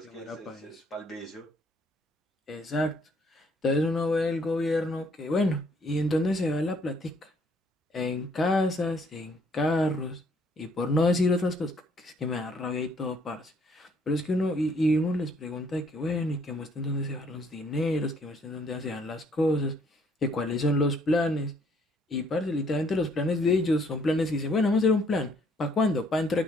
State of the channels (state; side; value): normal; both; correlation 0.65